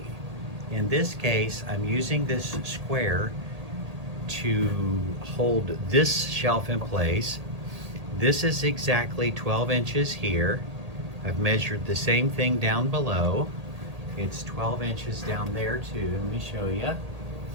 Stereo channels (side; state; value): left; late; 1.8 ms